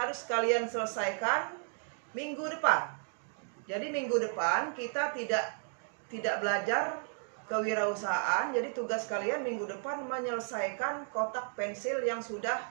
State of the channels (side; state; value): left; silent; 55 dB below the other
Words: kalian selesaikan minggu depan. Jadi minggu depan kita tidak belajar kewirausahaan. Jadi tugas kalian minggu depan menyelesaikan kotak pensil yang sudah